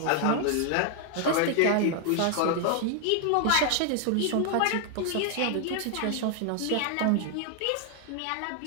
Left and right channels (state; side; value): different; both; correlation 0.00